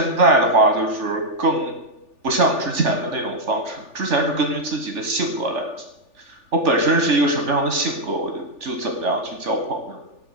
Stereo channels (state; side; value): late; left; 3.4 ms